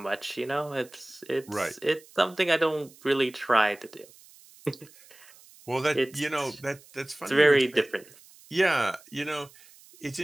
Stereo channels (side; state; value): right; noise; hiss, 24 dB below the sound